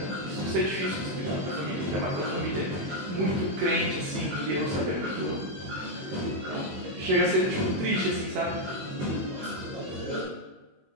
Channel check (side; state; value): left; late; 21 ms